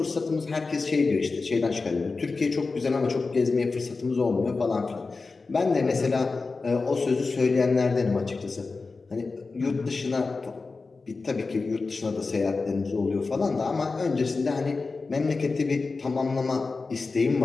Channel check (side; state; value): right; quieter; 4.0 dB